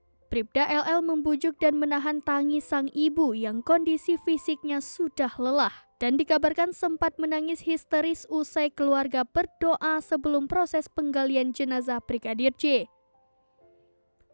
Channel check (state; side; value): inverted; both; correlation -1.00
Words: Bribda LL membujuk dan menahan tangis sang ibu yang kondisi fisiknya sudah lelah dan dikabarkan sempat menangis histeris usai keluarga berdoa sebelum proses penggalian jenazah Brigadir J.